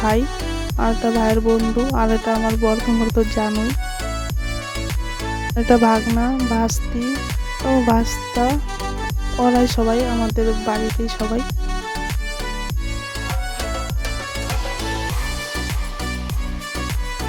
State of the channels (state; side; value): identical; both; correlation 1.00